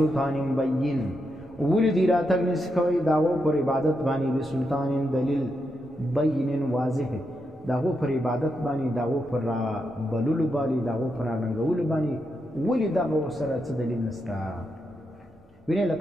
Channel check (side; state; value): both; normal; correlation 0.84